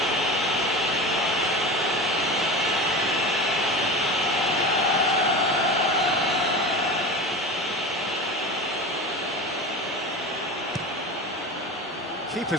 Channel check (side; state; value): both; normal; correlation 0.29